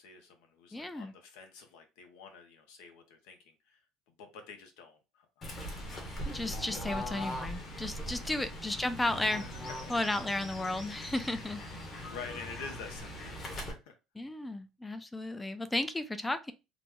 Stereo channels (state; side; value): normal; both; correlation 0.85